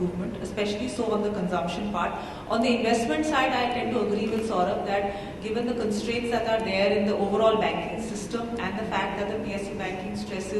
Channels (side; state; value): both; identical; correlation 1.00